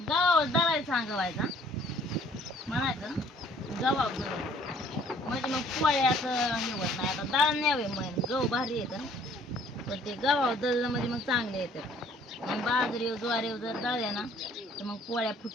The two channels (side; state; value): both; normal; correlation 0.58